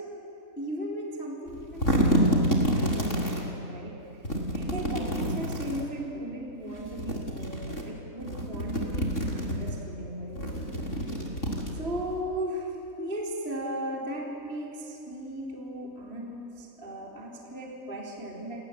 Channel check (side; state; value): right; late; 3.6 ms